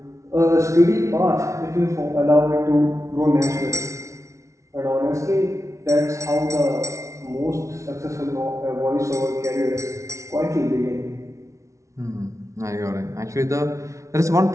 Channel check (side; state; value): left; late; 0.14 ms